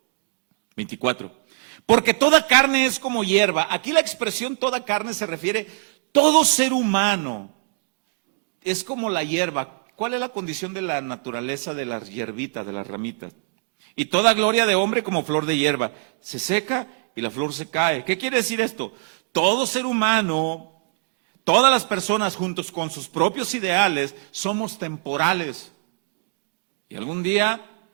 24, porque toda carne es como hierba. Aquí la expresión toda carne se refiere todo ser humano. Es como la hierba. ¿Cuál es la condición de la naturaleza de las hierbitas, de las ramitas? Y toda gloria de hombre como flor de hierba. Se seca y la flor se cae. ¿Qué quiere decir esto? todo ser humano, todas las personas juntos con sus propios ideales, somos temporales. Y algún día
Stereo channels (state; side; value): quieter; left; 40.0 dB